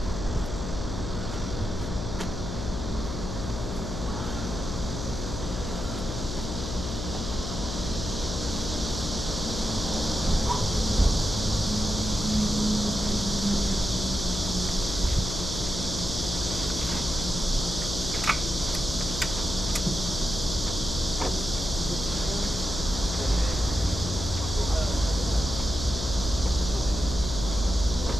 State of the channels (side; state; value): left; noise; hum, 5 dB below the sound